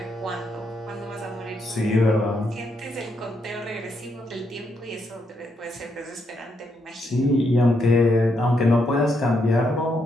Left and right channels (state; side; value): normal; both; correlation 0.78